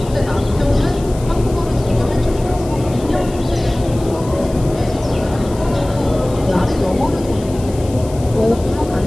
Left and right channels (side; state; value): left; noise; hiss, 19 dB below the sound